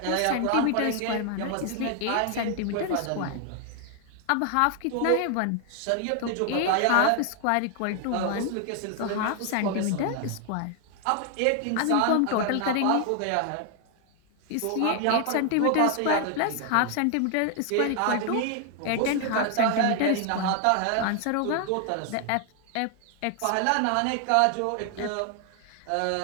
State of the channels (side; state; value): both; different; correlation 0.00